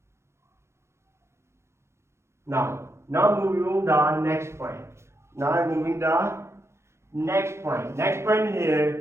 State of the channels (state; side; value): late; left; 0.13 ms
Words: Now moving on the next point. Now I'm moving the next point. Next point